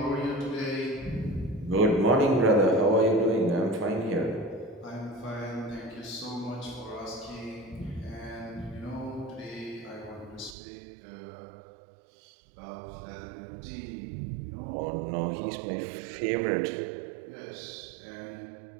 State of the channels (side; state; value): left; drops out; at 10.6 s